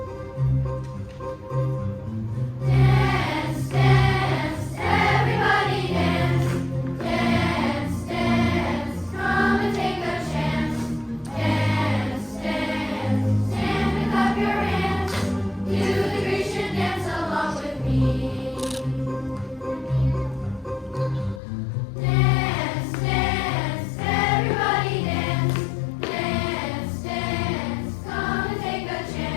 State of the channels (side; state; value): right; drops out; at 21.4 s